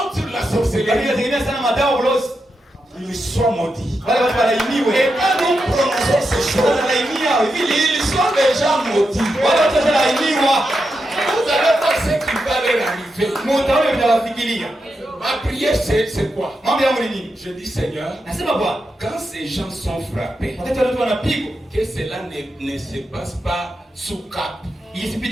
sur la sorcellerie. Ils sont maudits. Et quand nous prononçons ces choses, ils sont déjà maudits. Vous allez voir ce qui va leur arriver. Ma prière, c'est quoi? Je dis, Seigneur, quand ces gens sont frappés, que cela ne se passe pas sous cap.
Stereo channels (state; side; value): normal; both; correlation 0.86